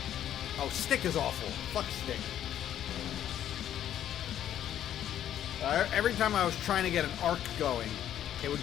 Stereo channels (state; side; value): quieter; right; 10.9 dB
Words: Oh, stick is awful. Fuck stick. Every time I was trying to get an arc going, it would